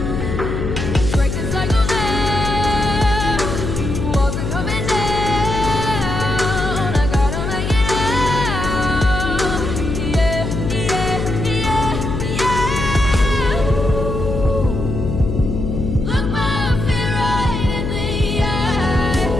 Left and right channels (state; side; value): noise; left; hum, 3 dB below the sound